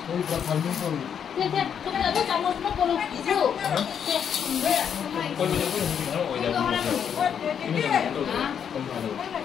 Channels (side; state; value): right; quieter; 8.1 dB